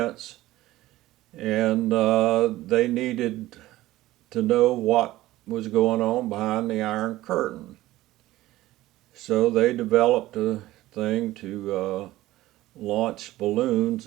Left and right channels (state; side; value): quieter; left; 16.4 dB